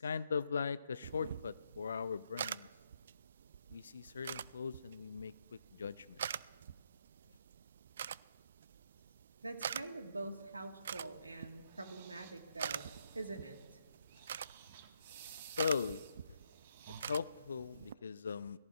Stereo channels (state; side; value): inverted; both; correlation -0.77